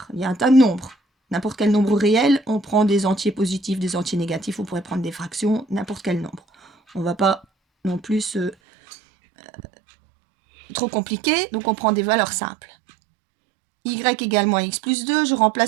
il y a un tas de nombres. N'importe quel nombre réel, on prend des entiers positifs, des entiers négatifs, on pourrait prendre des fractions, n'importe quel nombre. On ne va pas non plus trop compliqué, donc on prend des valeurs simples. Y égale moins x plus 2, je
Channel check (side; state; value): left; drops out; at 8.6 s